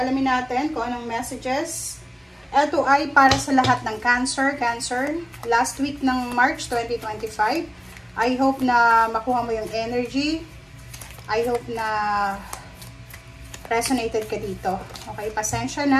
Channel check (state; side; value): identical; both; correlation 1.00